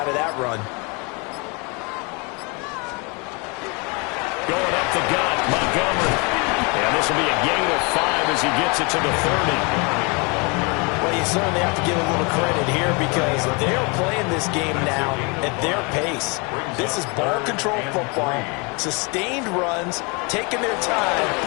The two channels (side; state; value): right; quieter; 30.8 dB